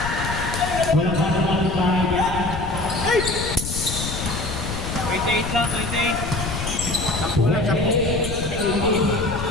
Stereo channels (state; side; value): noise; left; rumble, 6 dB below the sound